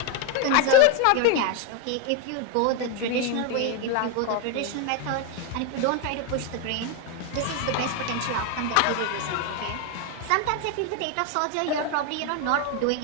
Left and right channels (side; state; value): both; different; correlation 0.01